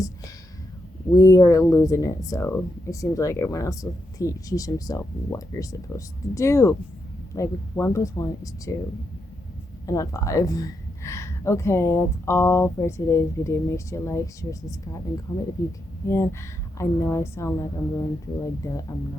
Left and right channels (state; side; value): normal; both; correlation 0.83